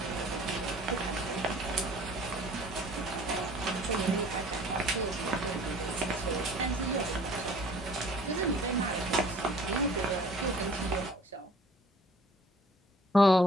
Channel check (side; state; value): both; normal; correlation 0.52